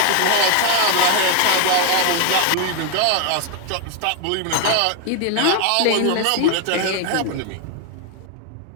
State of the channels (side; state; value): both; different; correlation 0.00